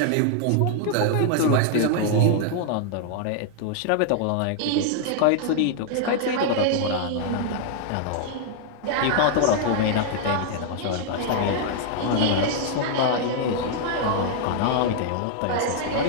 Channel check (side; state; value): both; different; correlation -0.01